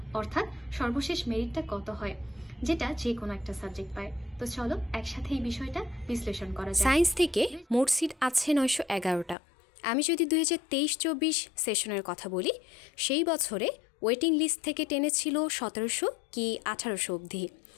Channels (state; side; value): drops out; right; at 9.3 s